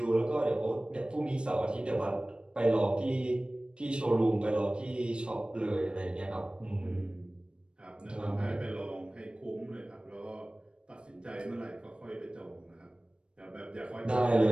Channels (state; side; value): late; left; 0.055 ms